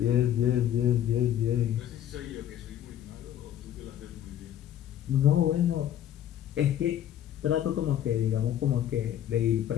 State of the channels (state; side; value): quieter; right; 10.9 dB